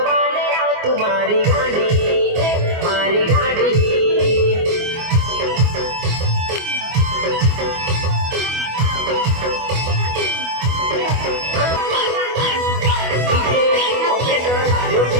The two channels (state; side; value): late; left; 24 ms